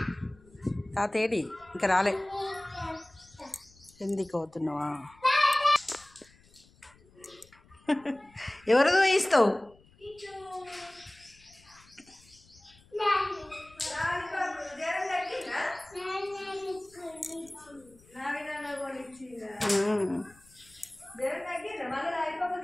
తాత ఏడి? ఇంకా రాలే. ఎందుకు అవుతున్నావా? ఎవరిదో ఇస్తావు?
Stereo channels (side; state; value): left; noise; rumble, 28 dB below the sound